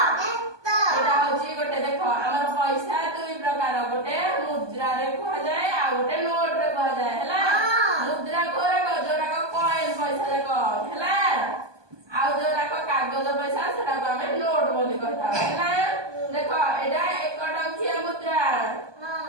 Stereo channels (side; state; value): left; late; 1.2 ms